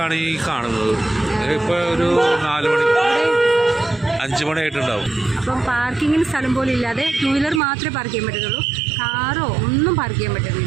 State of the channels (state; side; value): drops out; left; at 7.6 s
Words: ഈ കാണുന്നത്. ഇപ്പോൾ ഒരു 4 മണി 5 മണിയായിട്ടുണ്ടാവും. അപ്പം പാർക്കിങ്ങിന് സ്ഥലം പോലും ഇല്ലാതെ 2 വീലർ മാത്രമേ പാർക്ക് ചെയ്യാൻ പറ്റത്തുള്ളൂ. കാറോ ഒന്നും പാർക്ക് ചെയ്യാൻ